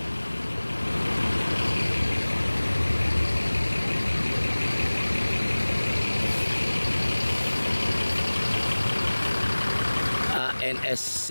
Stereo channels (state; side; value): inverted; both; correlation -1.00